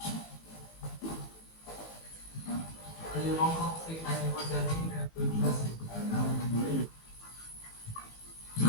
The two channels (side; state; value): right; late; 18 ms